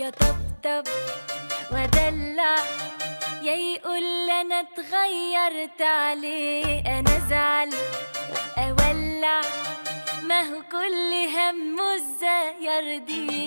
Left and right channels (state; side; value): inverted; both; correlation -1.00